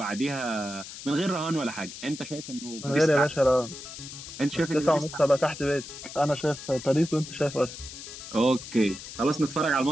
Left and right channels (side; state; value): left; noise; hiss, 12 dB below the sound